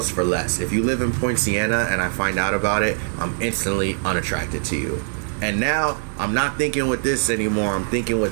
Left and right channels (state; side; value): silent; left; digital silence